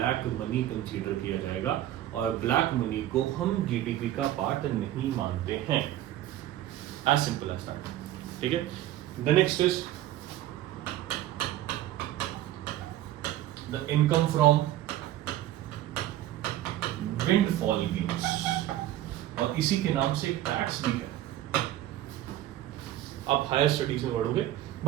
मनी कंसीडर किया जाएगा, और ब्लैक मनी को हम जीडीपी का पार्ट नहीं मानते हैं। As simple as that. ठीक है, the next is the income from windfall gains, और इसी के नाम से टैक्स भी है। आप हायर स्टडीज में पढ़ोगे,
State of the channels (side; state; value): left; quieter; 13.6 dB